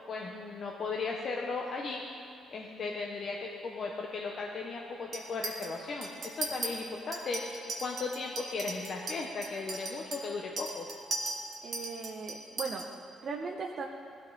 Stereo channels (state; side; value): normal; both; correlation 0.73